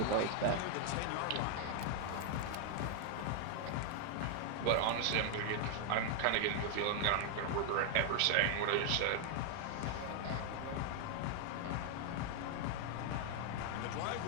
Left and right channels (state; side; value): different; both; correlation 0.00